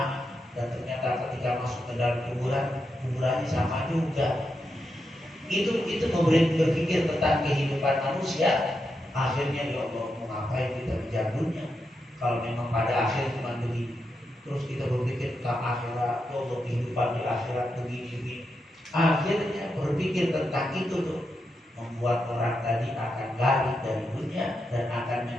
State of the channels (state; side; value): normal; both; correlation 0.85